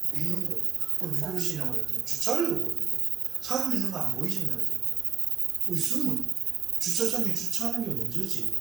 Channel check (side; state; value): left; quieter; 8.3 dB